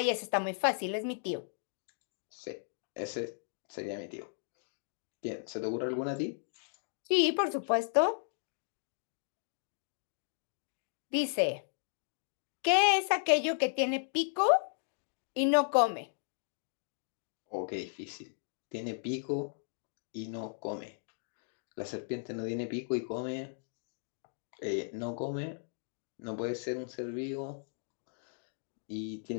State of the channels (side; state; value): right; silent; digital silence